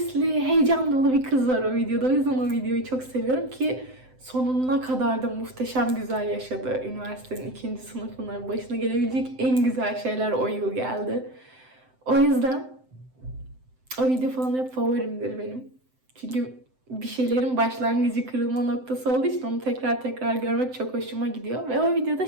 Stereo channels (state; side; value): late; left; 7.8 ms